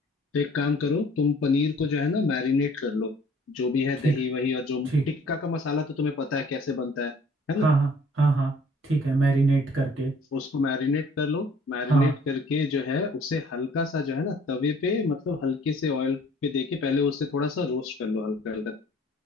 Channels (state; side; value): normal; both; correlation 0.55